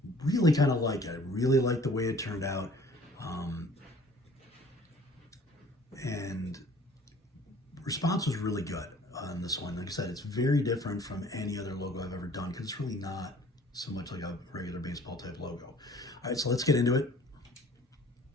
really kind of like it. I really like the way it turned out. And response was really good on this one. Like I said, it's very different from any other logo I've ever done because it's really not so much like a regular baseball type logo. All right, so let's get into it.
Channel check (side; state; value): both; normal; correlation 0.52